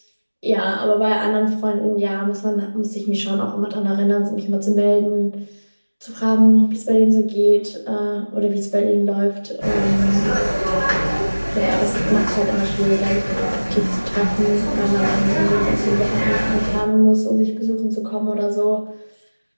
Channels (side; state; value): both; inverted; correlation -1.00